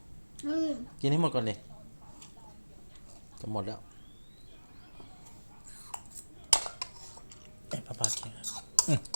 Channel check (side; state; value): both; inverted; correlation -1.00